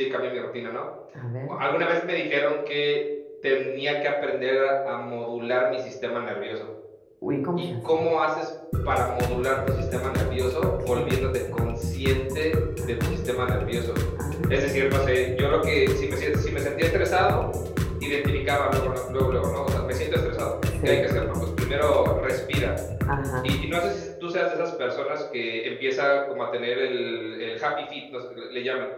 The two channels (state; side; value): identical; both; correlation 1.00